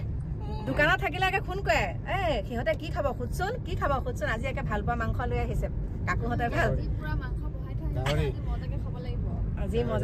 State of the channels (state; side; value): identical; both; correlation 1.00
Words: দোকানত থাকিলে একে ফোন কৰে সিহঁতে কি খাব খুদচোন আজি একে ভাল পোৱা মাংস লৈ আহিছে কাকুহঁতে ভাল পুৰা মাংস বহাই থৈ আহিছে মজাকে খাব লাগিব আজি